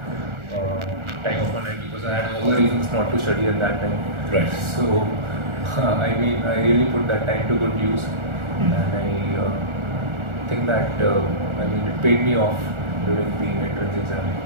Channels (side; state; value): left; late; 1.4 ms